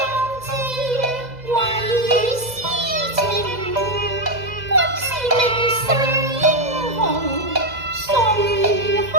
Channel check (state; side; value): late; left; 2.0 ms